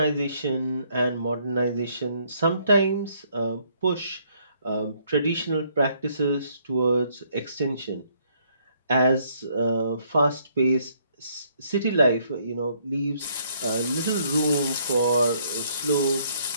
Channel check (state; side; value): inverted; both; correlation -0.68